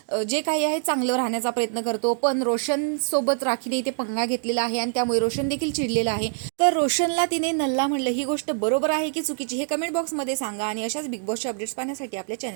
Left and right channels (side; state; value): left; silent; digital silence